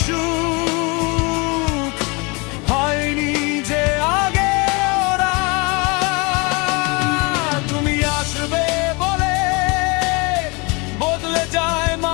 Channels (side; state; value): right; quieter; 28.7 dB